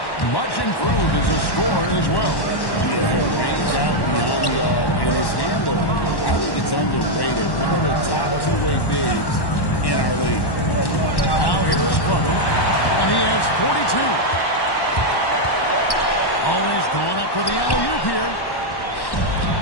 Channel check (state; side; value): late; right; 1.1 ms